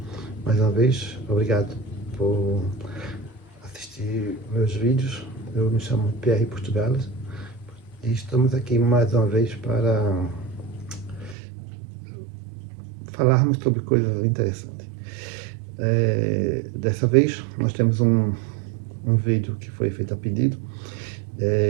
vez, obrigado por assistir meus vídeos. Eu me chamo Pierre Portugales e estamos aqui mais uma vez para falarmos sobre coisas interessantes. Dessa vez nós temos um vídeo que foi feito a pedido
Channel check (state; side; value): drops out; left; at 11.4 s